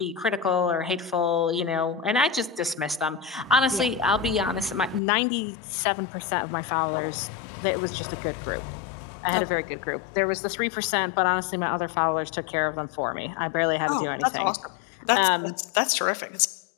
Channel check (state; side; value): drops out; right; at 5.0 s